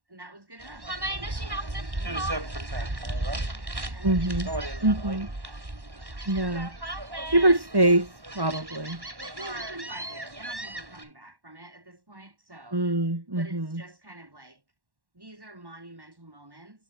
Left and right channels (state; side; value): late; left; 1.1 ms